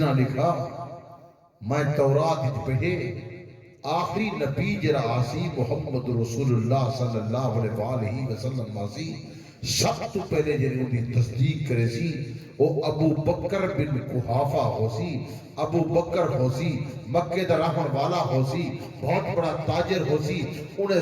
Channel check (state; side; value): identical; both; correlation 1.00